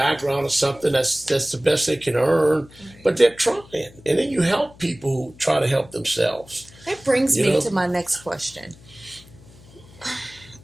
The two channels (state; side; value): noise; left; hum, 23 dB below the sound